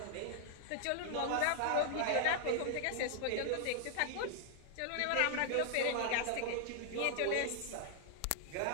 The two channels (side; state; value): both; different; correlation -0.01